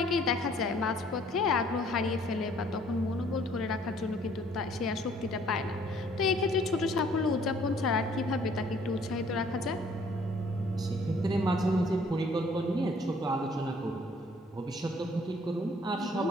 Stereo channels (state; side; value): normal; both; correlation 0.60